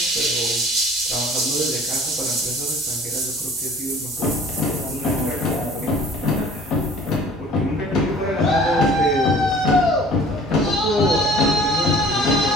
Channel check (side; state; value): both; normal; correlation 0.49